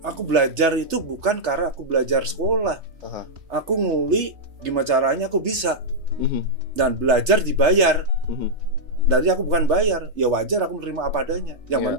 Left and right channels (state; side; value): late; left; 3.3 ms